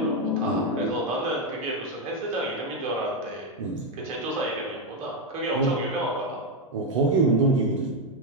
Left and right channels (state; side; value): normal; both; correlation 0.05